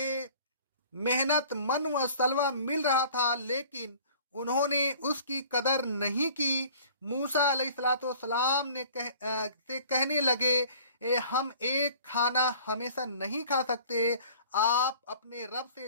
محنت من و سلوہ مل رہا تھا، لیکن انہوں نے اس کی قدر نہیں کی۔ موسیٰ علیہ السلام نے کہنے لگے، ہم ایک کھانا ہمیشہ نہیں کھا سکتے، آپ اپنے رب سے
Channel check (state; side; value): inverted; both; correlation -0.50